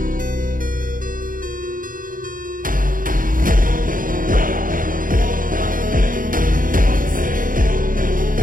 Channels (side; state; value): left; late; 0.40 ms